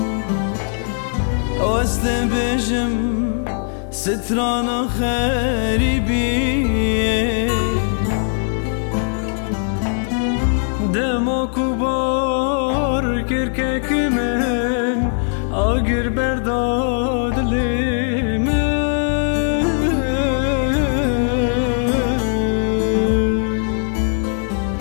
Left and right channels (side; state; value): right; silent; 61 dB below the other